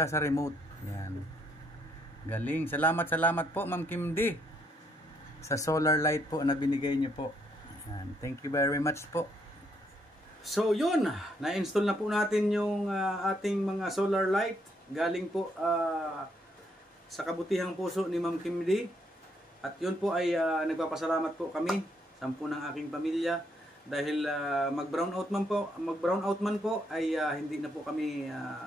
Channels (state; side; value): normal; both; correlation 0.72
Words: sa remote. Yan. Galing. Salamat po Ma'am Kim D sa solar light po na binigay niyo po. Yan. Thank you very much po. So yun, na-install na po natin yung ating mga solar light. Galing po sa kabutihang puso ni Ma'am Kim D. At yun po ay nagpapasalamat po kami, 10 ng aking pamilya, dahil mag-brownout man po ay hindi na po kami